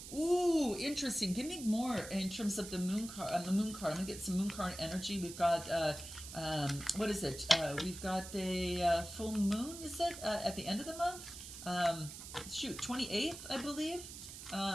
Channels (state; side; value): noise; right; hiss, 11 dB below the sound